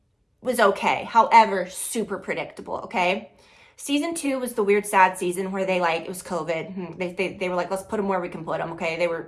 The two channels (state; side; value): identical; both; correlation 1.00